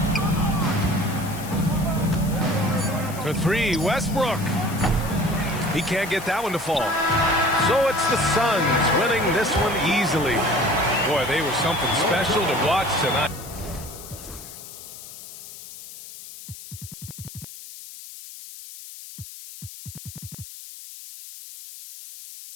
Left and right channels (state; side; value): noise; left; hiss, 14 dB below the sound